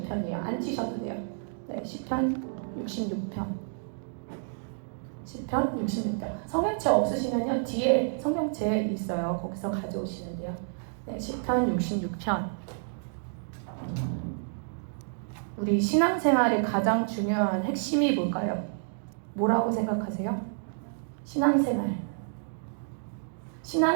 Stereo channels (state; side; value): silent; left; digital silence